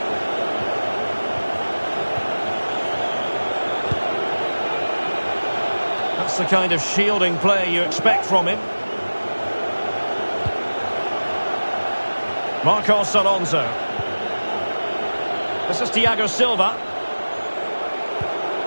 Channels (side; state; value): both; inverted; correlation -1.00